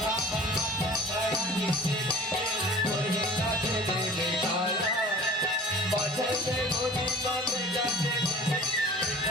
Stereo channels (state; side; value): normal; both; correlation 0.44